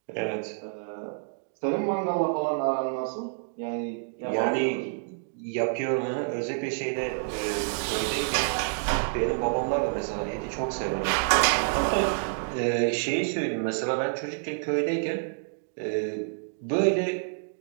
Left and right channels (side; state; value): left; silent; digital silence